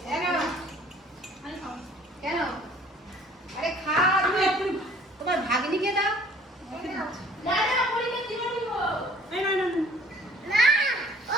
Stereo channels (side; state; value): both; normal; correlation 0.54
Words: কেন? আরে খা, তোমার ভাগ্নিকে দাও। না না পরিকে দিব দিব।